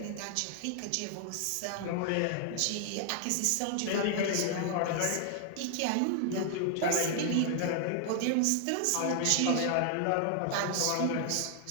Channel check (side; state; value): both; different; correlation 0.00